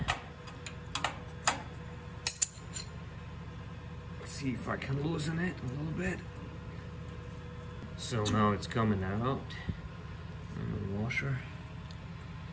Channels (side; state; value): both; identical; correlation 1.00